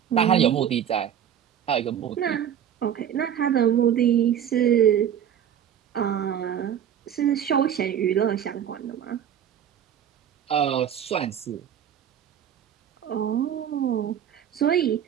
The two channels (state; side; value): quieter; left; 9.5 dB